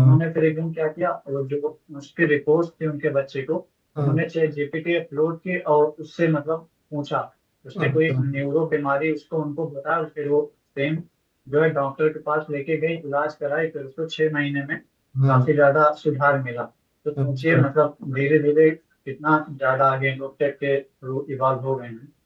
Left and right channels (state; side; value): identical; both; correlation 1.00